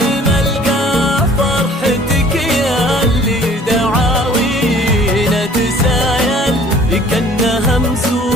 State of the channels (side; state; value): both; normal; correlation 0.52